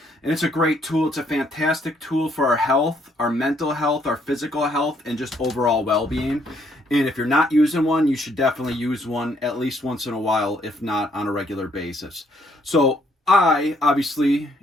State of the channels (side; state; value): both; normal; correlation 0.69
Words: and it's a great tool. It's a fantastic tool for our health, our mental health, our physical health, and just overall well-being. And if you're not using one, you should definitely use one at least once in a while, if not on a regular basis. So I, obviously,